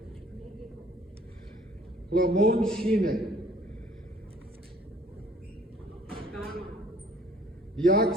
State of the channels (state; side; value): normal; both; correlation 0.56